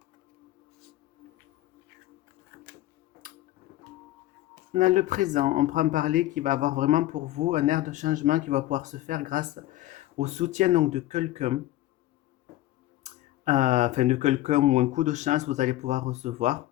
Dans le présent, on prend parler qui va avoir vraiment pour vous un air de changement qui va pouvoir se faire grâce au soutien donc de quelqu'un, enfin de quelqu'un ou un coup de chance vous allez pouvoir recevoir,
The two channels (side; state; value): right; quieter; 15.4 dB